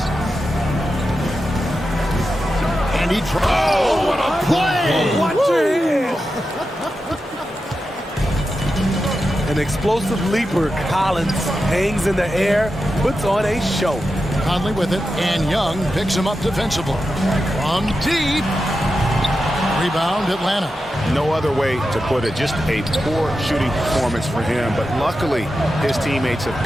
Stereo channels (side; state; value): both; normal; correlation 0.90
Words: And he tries. Oh, what a play! Watch your hand. An explosive leaper, Collins hangs in the air, puts on a show. Conley with it, and Young picks him up defensively. From deep. Rebound, Atlanta. No other way to put it. Just a poor shooting performance for him, but luckily his teammates have